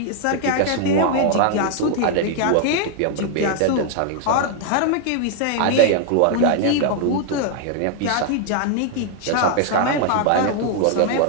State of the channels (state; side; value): different; both; correlation 0.00